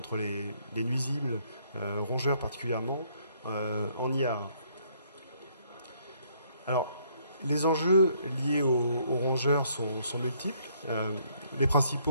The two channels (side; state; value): both; inverted; correlation -0.67